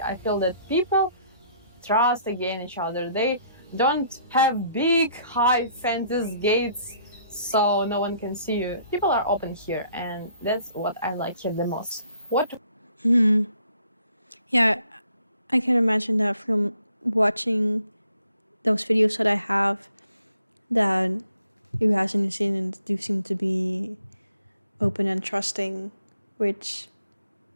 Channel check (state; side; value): inverted; both; correlation -0.65